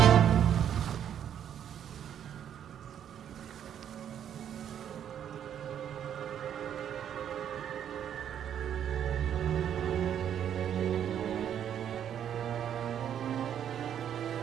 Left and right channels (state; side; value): quieter; left; 9.4 dB